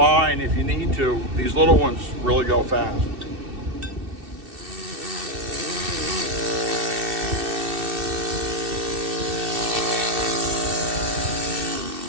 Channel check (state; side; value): late; left; 2.6 ms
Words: if you need to, these little ones really go fast.